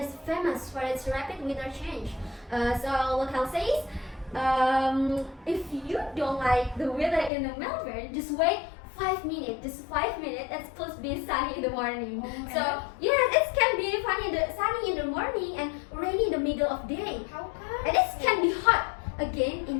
famous for its rapid weather change. So local says, if you don't like the weather in the Melbourne, just wait 5 minutes. Just 5 minutes. It's supposed to be sunny in the morning. Oh, So and- yeah, it can be sunny in the morning and rainy in the middle of day. How come? And it can be hot again in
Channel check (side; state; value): right; drops out; at 7.3 s